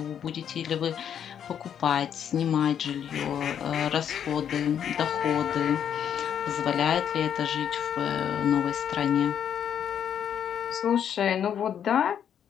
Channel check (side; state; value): right; quieter; 8.8 dB